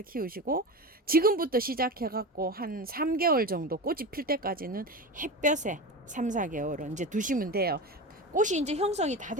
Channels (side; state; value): both; normal; correlation 0.25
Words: 키우시고 지금부터 시작해갖고 한 3개월 정도 꽃이 필 때까지는 햇볕에 3, 4개월은 이제 두시면 돼요. 꽃이 이제 형성이 다